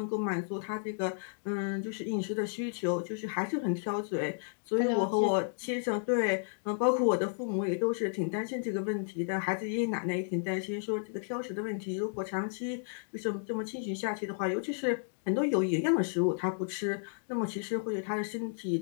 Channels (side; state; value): right; silent; digital silence